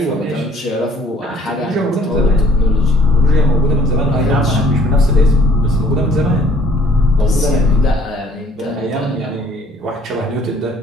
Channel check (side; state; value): both; normal; correlation 0.58